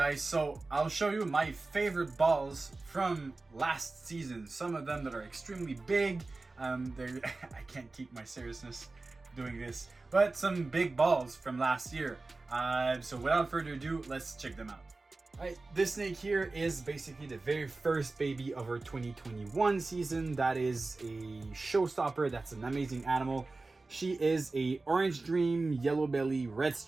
so I'll show you my favorite balls from last season. Some of them that are extremely big. I can't keep my seriousness doing this, but some big balls from last year. So without further ado, let's check them out. Alright, this snake here is basically the very first baby of our 2021 season. That is a showstopper. That's an amazing animal. She is a orange dream, yellow belly, red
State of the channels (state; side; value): quieter; left; 3.4 dB